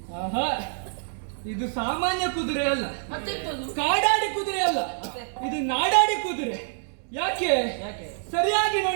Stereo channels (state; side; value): silent; left; digital silence